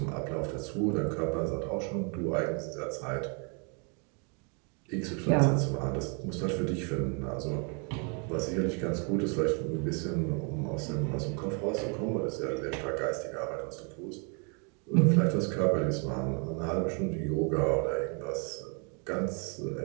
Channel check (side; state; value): left; quieter; 36.3 dB